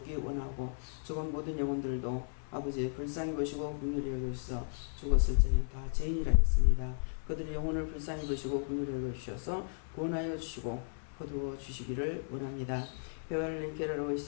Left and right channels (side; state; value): right; silent; 54 dB below the other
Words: 원하고, 죽은 모든 영혼들도 아버지 불쌍히 보시고 긍휼히 여주셔서 죽었을 적엔 다 죄인이라 했습니다. 그들의 영혼을 불쌍히 보시고 긍휼히 여주셔서 구원하여 주시고 거두어 주시기를 원합니다. 베알린